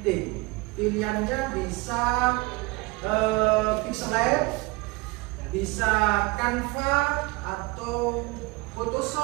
Pilihannya bisa Pixelab, bisa Canva atau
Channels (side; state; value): left; quieter; 24.6 dB